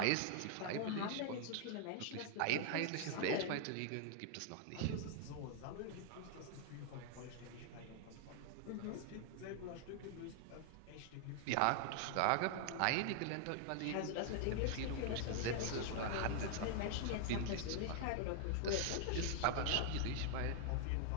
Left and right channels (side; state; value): both; different; correlation 0.00